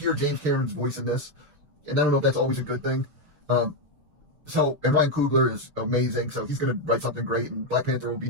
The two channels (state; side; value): late; left; 6.5 ms